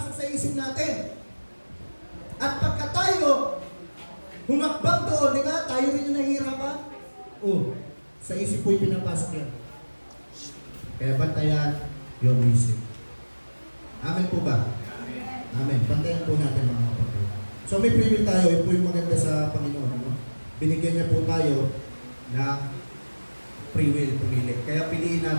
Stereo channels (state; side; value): inverted; both; correlation -1.00